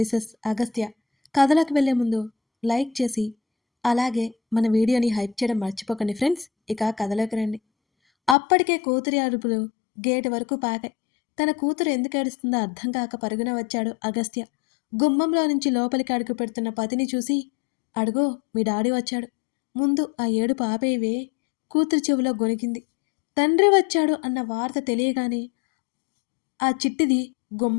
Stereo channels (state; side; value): drops out; right; at 8.3 s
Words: అగస్త్య. కథలోకి వెళ్ళే ముందు లైక్ చేసి అలాగే మన వీడియోని హైప్ చేయడం మర్చిపోకండి ఫ్రెండ్స్. ఇక కథలోకి రండి. అప్పటికే కూతురి అరుపులు గేటు వరకు పాకాయి. తన కూతురు ఎందుకు ఏడుస్తుందో అర్థం కాక పరుగున వచ్చాడు అగస్త్య. గుమ్మంలో నుంచి లోపలికి అడుగు పెడుతున్న పతిని చూసి, అడుగో మీ డాడీ వచ్చాడు, ముందు ఆ ఏడుపు ఆపేవే. కూతురు చెవిలో గొనిగింది. తండ్రి వచ్చాడు అన్న వార్త తెలియగానే ఆ చిట్టిది